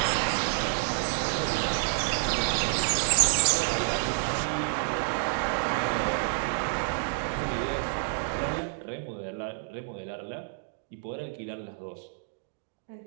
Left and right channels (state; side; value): silent; left; digital silence